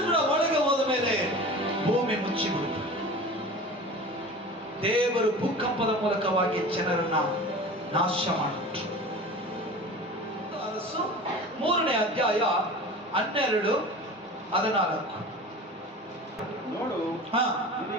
ಕೂಡ ಒಳಗೆ ಹೋದ ಮೇಲೆ ಭೂಮಿ ಮುಚ್ಚಿಬಿಡ್ತು. ದೇವರು ಭೂಕಂಪದ ಮೂಲಕವಾಗಿ ಜನರನ್ನ ನಾಶ ಮಾಡಿಬಿಟ್ರು. 3ನೇ ಅಧ್ಯಾಯ 12-14. ನೋಡು,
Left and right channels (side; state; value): both; normal; correlation 0.36